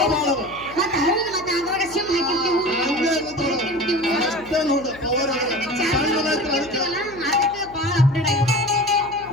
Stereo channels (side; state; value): left; noise; hum, 20 dB below the sound